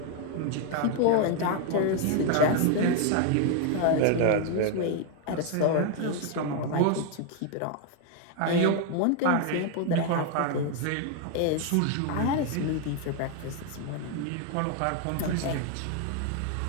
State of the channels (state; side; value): different; both; correlation 0.00